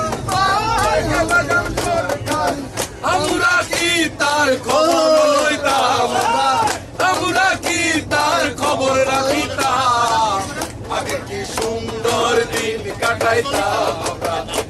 আমরা কি তার খবর লইতাম আমরা কি তার খবর রাখিতাম আগে কি সুন্দর দিন কাটাইতাম আমরা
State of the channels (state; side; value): identical; both; correlation 1.00